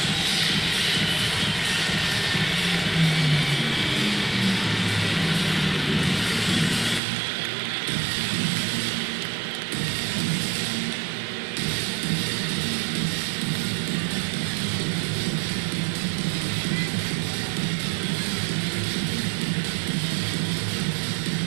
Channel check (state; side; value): drops out; left; at 7.0 s